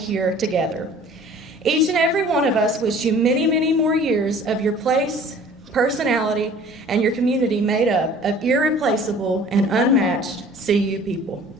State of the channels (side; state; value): both; normal; correlation 0.49